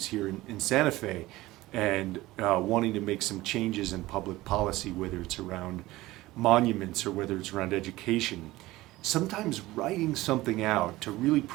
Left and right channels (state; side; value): quieter; left; 18.1 dB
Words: here in Santa Fe, and wanting to make some changes in public policy, whether it's around monuments or whether it's around education, sometimes writing something out to really